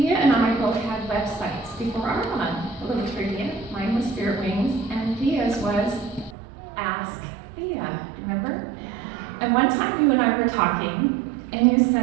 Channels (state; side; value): drops out; left; at 6.4 s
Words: and I both had websites before our one. A little trivia. Mine was Spirit Wings, and Thea's was Ask Thea. Remember? And one time you and I were talking, and you